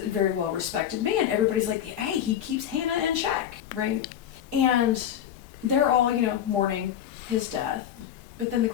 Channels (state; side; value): quieter; right; 10.1 dB